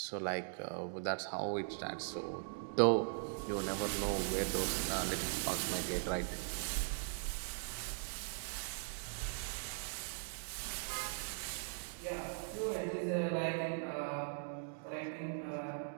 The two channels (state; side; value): silent; left; digital silence